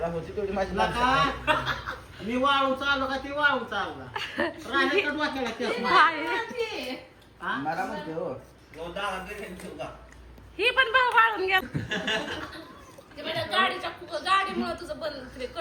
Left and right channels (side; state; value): both; identical; correlation 1.00